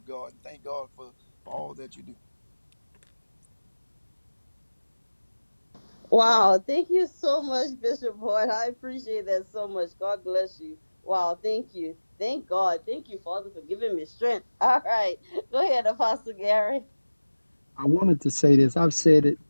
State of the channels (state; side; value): inverted; both; correlation -1.00